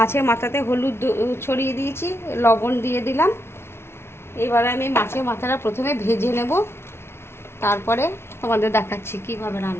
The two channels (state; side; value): late; right; 0.12 ms